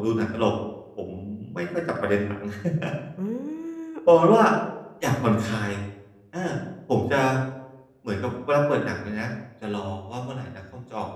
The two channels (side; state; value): both; identical; correlation 1.00